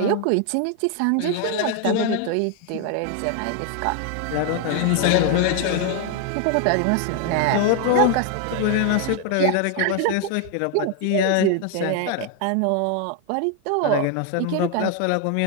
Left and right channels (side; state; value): both; different; correlation 0.01